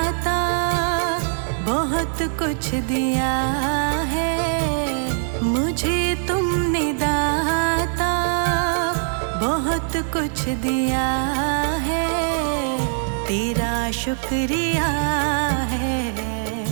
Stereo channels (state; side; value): silent; left; digital silence